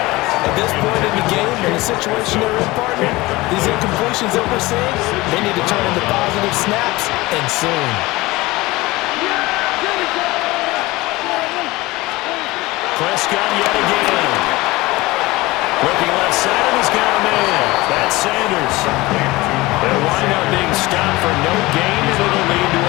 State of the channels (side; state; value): right; quieter; 20.6 dB